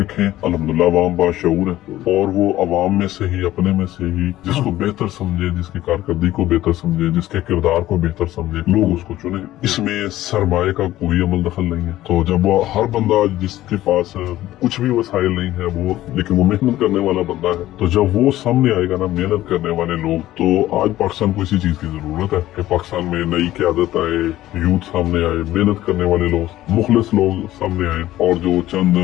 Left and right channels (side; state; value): right; quieter; 14.8 dB